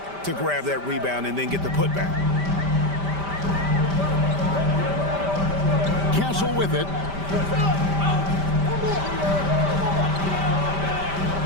to grab that rebound and then get the putback. Castle with it.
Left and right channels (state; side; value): late; left; 5.1 ms